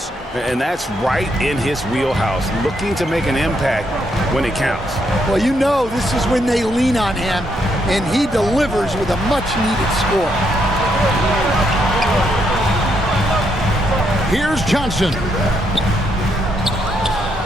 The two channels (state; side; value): normal; both; correlation 0.76